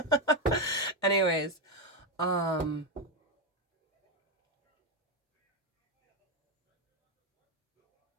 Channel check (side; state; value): both; normal; correlation 0.08